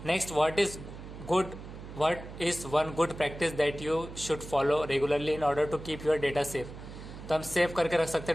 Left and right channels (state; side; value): noise; right; hum, 13 dB below the sound